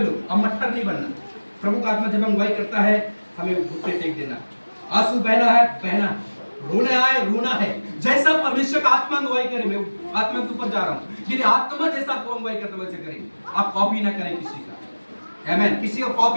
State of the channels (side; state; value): both; inverted; correlation -1.00